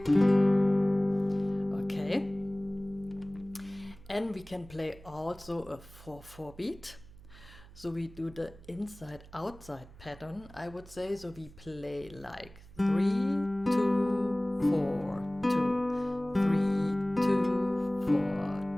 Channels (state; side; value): noise; right; hum, 21 dB below the sound